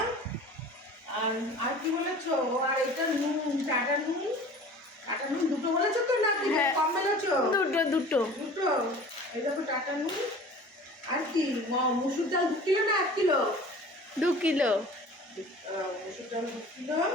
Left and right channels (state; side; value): normal; both; correlation 0.43